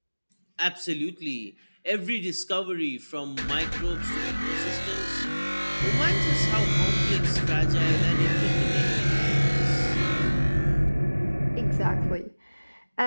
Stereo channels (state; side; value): inverted; both; correlation -1.00